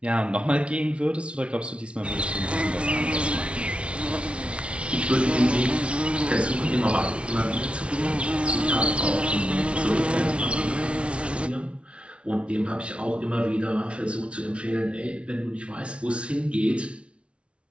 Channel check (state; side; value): late; left; 0.060 ms